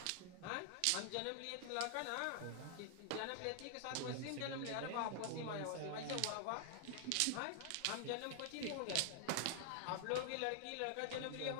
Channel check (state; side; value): different; both; correlation 0.00